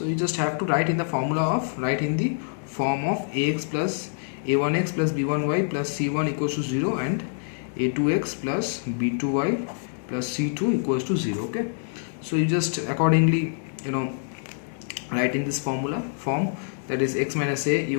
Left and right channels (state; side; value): silent; right; 61 dB below the other